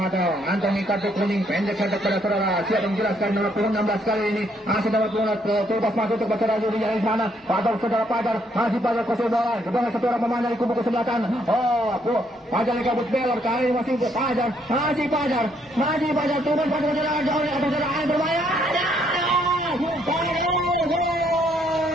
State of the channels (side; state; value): both; normal; correlation 0.70